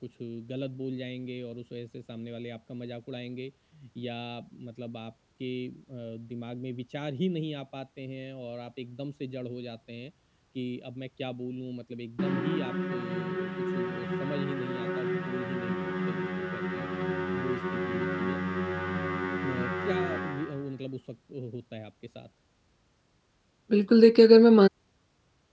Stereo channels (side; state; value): both; identical; correlation 1.00